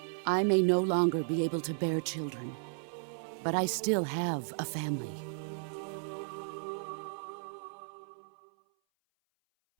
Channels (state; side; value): silent; left; 55 dB below the other